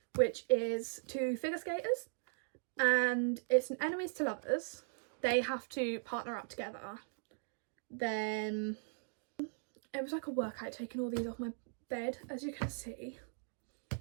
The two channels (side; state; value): left; silent; digital silence